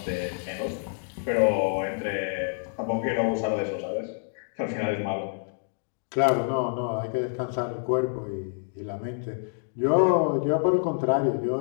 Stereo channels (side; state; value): right; silent; digital silence